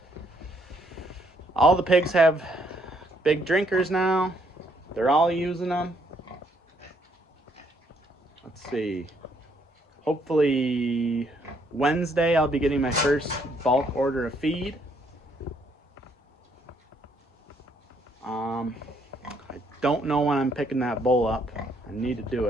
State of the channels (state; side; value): normal; both; correlation 0.69